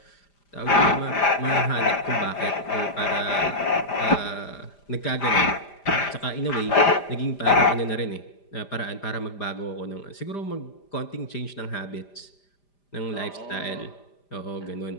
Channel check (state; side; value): late; right; 5.0 ms